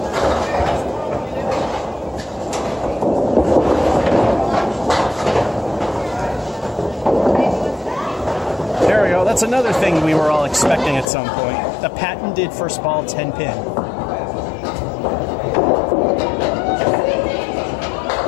There we go. That's another thing we were all expecting at some point. The patented first ball 10 pin.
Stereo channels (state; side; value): drops out; right; at 11.1 s